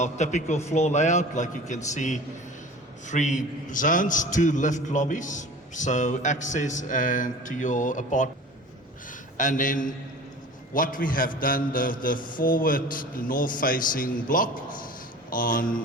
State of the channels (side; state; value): both; normal; correlation 0.40